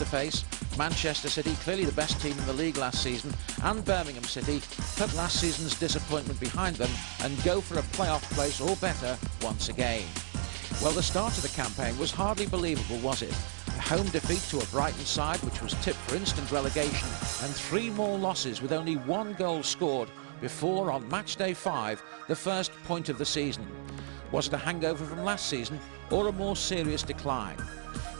face, Manchester City, clearly the best team in the league last season, and Birmingham City, put last season's disappointment behind them and go for a playoff place or better once again? Well, the start of the campaign was hardly believable, was it? A home defeat to a Brighton side which was tipped for instant relegation, and 3 more losses with only 1 goal scored before, on match day 5, the first point of the season. Was it a hangover from last season or a more serious decline?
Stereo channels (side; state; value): left; silent; 56 dB below the other